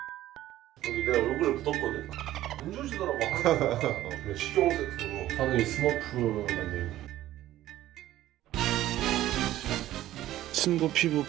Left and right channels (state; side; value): quieter; left; 14.2 dB